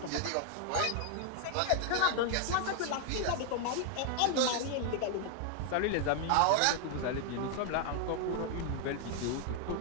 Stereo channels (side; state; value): both; different; correlation 0.00